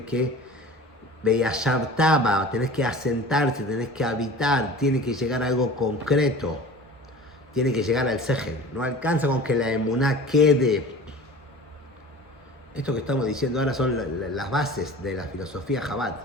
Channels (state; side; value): normal; both; correlation 0.39